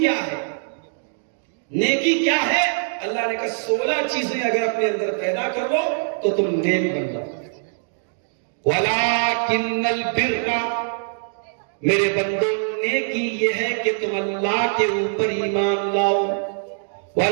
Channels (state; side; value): silent; left; digital silence